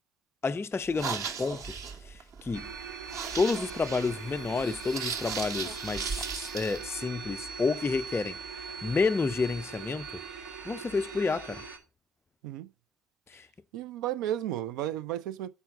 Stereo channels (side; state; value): both; normal; correlation 0.72